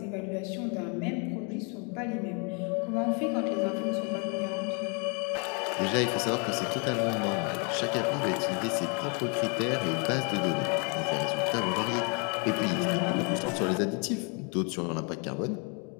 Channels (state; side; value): quieter; right; 35.6 dB